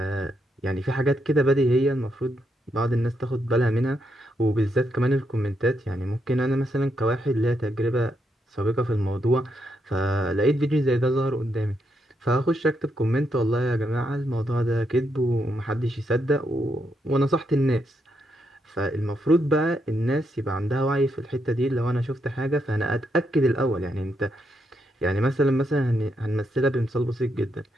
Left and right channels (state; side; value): normal; both; correlation 0.80